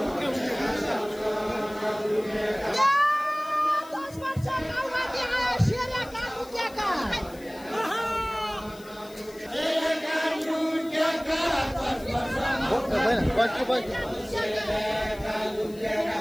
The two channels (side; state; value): left; noise; hiss, 23 dB below the sound